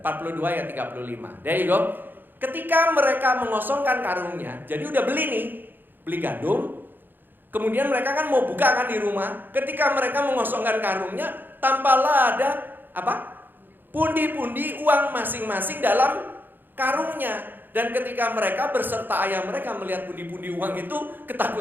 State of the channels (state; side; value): late; left; 0.093 ms